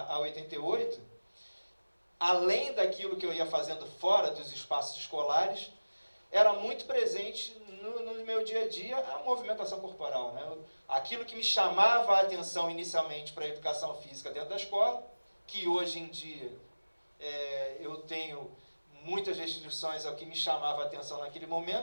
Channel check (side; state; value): both; inverted; correlation -1.00